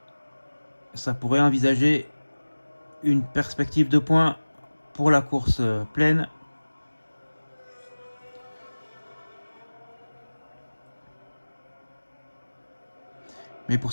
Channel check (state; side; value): inverted; both; correlation -1.00